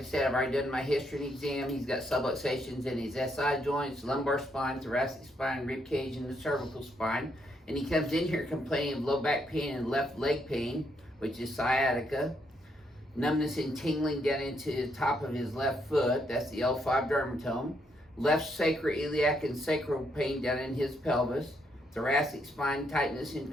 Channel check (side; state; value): both; normal; correlation 0.75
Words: said, I've already done my history and exam. He's got subluxations in his SI joints, lumbar spine, thoracic spine, rib cage, and the cervical spine. And he comes in here complaining of low back pain and left leg pain, which is sciatica. Numbness and tingling down into the top of his left foot. That's the L5 dermatome. Left sacroiliac and sacral pain down in his pelvis. Thoracic spine tightness and